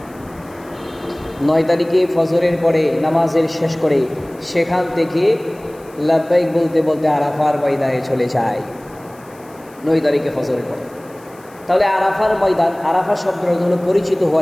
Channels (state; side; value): noise; left; hiss, 27 dB below the sound